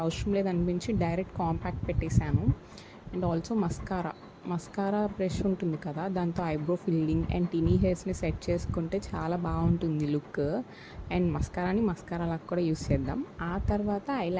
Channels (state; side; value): identical; both; correlation 1.00